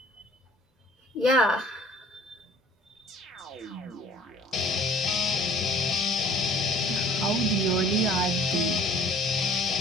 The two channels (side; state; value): both; normal; correlation 0.53